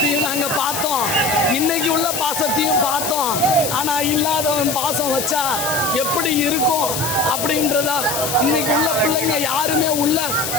நாங்கள் பார்த்தோம், இன்னைக்கு உள்ள பாசத்தையும் பார்த்தோம். ஆனால் இல்லாதவன் பாசம் வச்சா எப்படி இருக்கும் அப்படின்றதா இன்னைக்கு உள்ள பிள்ளைங்க யாருமே உள்ள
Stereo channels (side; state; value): left; noise; hiss, 3 dB below the sound